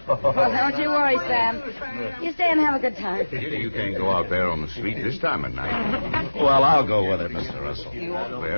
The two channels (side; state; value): both; inverted; correlation -1.00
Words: all. Well, don't you worry, Sam. You stay and have a good time. Kitty, you can't go out there on the street this time of night. Well, I'll go with it, Mr. Russell.